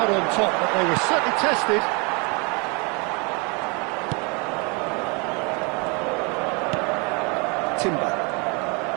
on top, but they were certainly tested. Timber.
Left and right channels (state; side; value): quieter; left; 31.3 dB